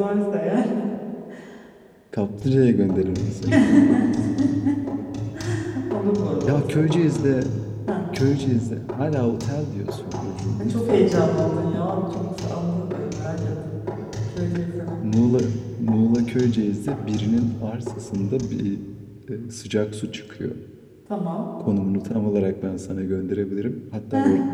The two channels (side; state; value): both; identical; correlation 1.00